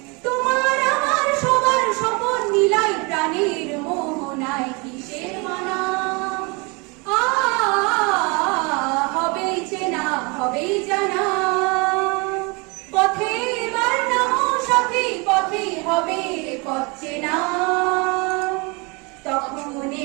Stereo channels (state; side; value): quieter; left; 29.2 dB